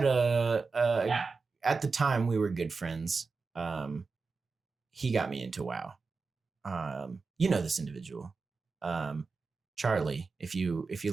at the time we were good friends. He got me into WoW. You know this individual. Charlie, if you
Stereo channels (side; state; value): left; quieter; 4.4 dB